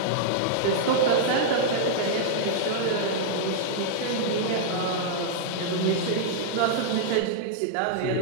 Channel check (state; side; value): different; both; correlation -0.02